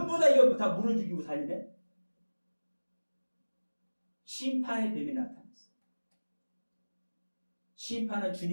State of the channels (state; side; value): inverted; both; correlation -1.00